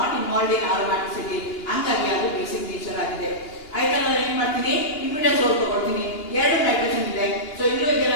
involved in aromaticity, ಹಂಗಾಗಿ ಅದು basic nature ಆಗಿದೆ. ಆಯ್ತಾ, ನಾನು ಏನ್ ಮಾಡ್ತೀನಿ, ಇಮಿಡಾಜೋಲ್ ತಗೊಳ್ತೀನಿ. 2 nitrogen ಇದೆ, so ಇಲ್ಲೂ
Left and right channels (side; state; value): right; late; 2.8 ms